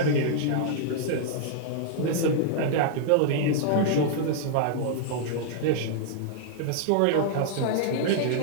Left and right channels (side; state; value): both; different; correlation -0.01